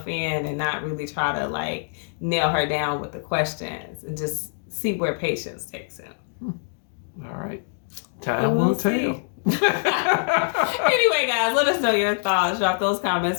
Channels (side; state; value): right; silent; 61 dB below the other